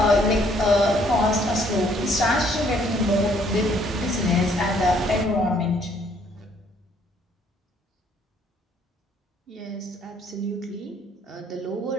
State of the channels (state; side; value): normal; both; correlation 0.64